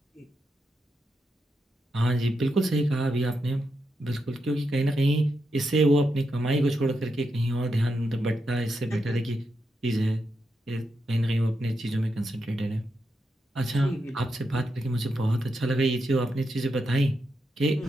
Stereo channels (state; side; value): normal; both; correlation 0.85